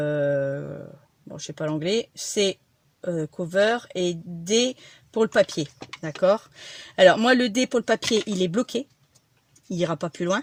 je sais pas l'anglais, C, cover et D pour le papier. D'accord? Alors, moi, le D pour le papier, il est bloqué. Il n'ira pas plus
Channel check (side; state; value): both; identical; correlation 1.00